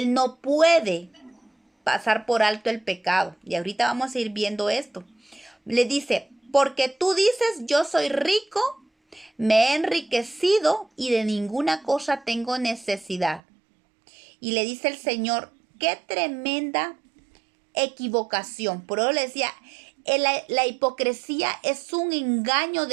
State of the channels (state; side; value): drops out; left; at 13.4 s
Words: no puede pasar por alto el pecado. Y ahorita vamos a ir viendo esto. Le dice, porque tú dices, yo soy rico, me he enriquecido y de ninguna cosa tengo necesidad. Y le dice el Señor, qué tremenda equivocación. Por eso le decía, la hipocresía es un engaño